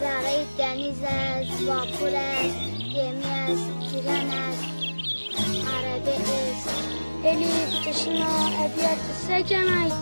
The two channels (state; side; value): inverted; both; correlation -1.00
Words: دنیز است واپور است گمی است تیران است عربه است الیف تشنا ابیات سکن